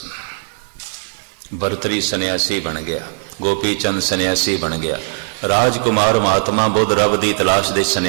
भरतरी सन्यासी बन गया, गोपी चंद सन्यासी बन गया, राजकुमार महात्मा बुद्ध रब की तलाश दे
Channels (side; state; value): left; silent; 67 dB below the other